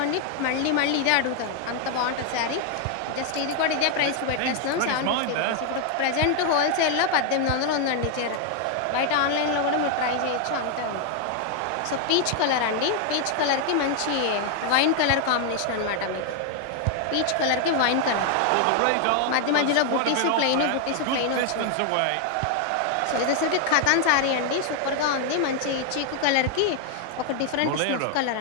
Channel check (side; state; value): both; different; correlation 0.00